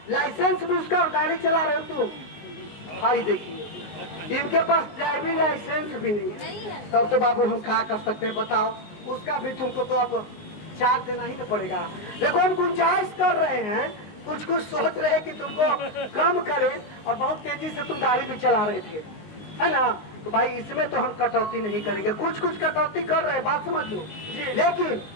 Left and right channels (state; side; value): late; right; 19 ms